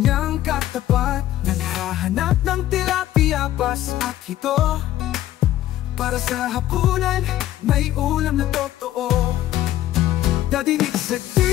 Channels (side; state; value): right; quieter; 13.6 dB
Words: katapat. Naghahanap ng tilapia, pas at hito. Para sa hapunan, may ulam na totoo. Dadinig sa